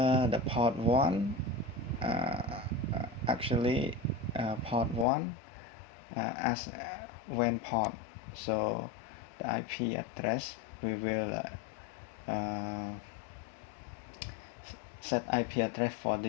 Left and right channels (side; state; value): right; drops out; at 5.1 s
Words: the port 1, actually port 1 as WAN port. So the IP address we will set IP address for